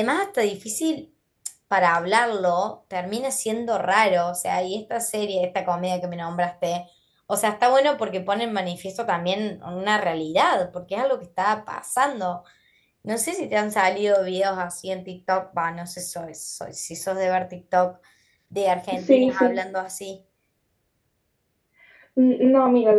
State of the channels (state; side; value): identical; both; correlation 1.00